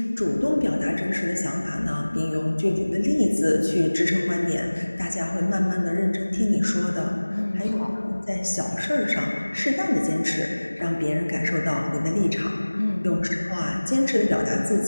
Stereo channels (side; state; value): both; inverted; correlation -1.00